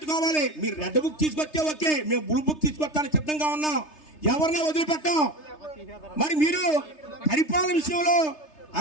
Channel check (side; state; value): right; late; 3.3 ms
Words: మీరు రెడ్ బుక్ తీసుకొస్తే ఓకే, మేము బ్లూ బుక్ తీసుకొస్తానికి సిద్ధంగా ఉన్నాం. ఎవరినే వదిలిపెట్టాం. మరి మీరు పరిపాలన విషయంలో